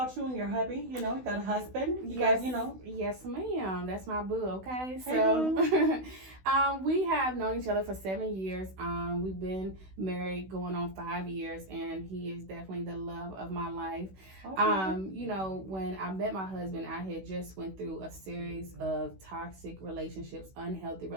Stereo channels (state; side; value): late; left; 16 ms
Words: you and your hubby. You got a husband. Yes, ma'am. That's my boo. Okay. Hey, so boo. we have known each other for 7 years. We've been married going on 5 years, and he is definitely the love of my life. Okay. When I met my husband, I had just went through a series of toxic relationships, unhealthy